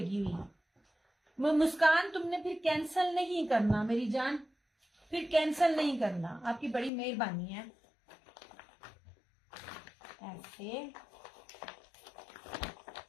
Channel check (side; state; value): right; drops out; at 6.9 s